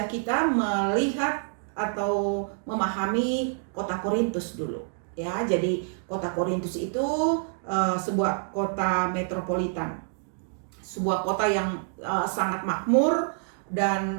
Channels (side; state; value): left; silent; digital silence